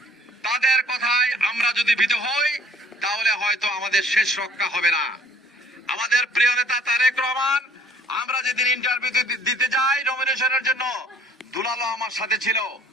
তাদের কথায় আমরা যদি ভীত হই তাহলে হয়তো আমাদের শেষ রক্ষা হবে না। আমাদের প্রিয় নেতা তারেক রহমান, আমরা যেদিন ইন্টারভিউ দিতে যাই নমিনেশনের জন্য, দুলালো আমার সাথে ছিল,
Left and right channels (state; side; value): normal; both; correlation 0.56